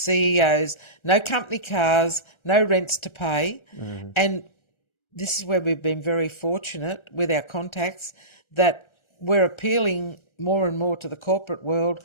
no company cars, no rents to pay. And this is where we've been very fortunate with our contacts that we're appealing more and more to the corporate world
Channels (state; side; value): late; right; 1.3 ms